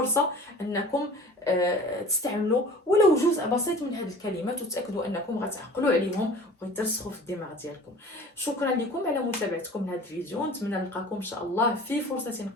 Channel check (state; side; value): normal; both; correlation 0.43